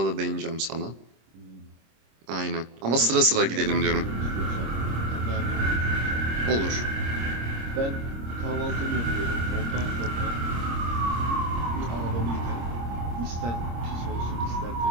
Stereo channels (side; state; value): left; late; 26 ms